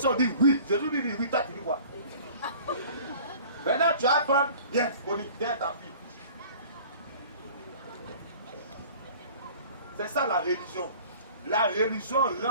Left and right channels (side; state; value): both; inverted; correlation -0.46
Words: on dit oui. Jésus lui dit oui. Toi tu dis quoi? Maintenant tu vas prendre. Viens, Bonnie, viens ta fille. C'est ça la religion. La religion